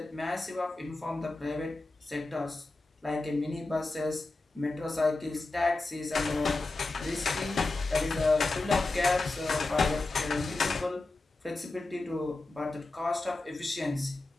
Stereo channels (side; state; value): right; quieter; 3.2 dB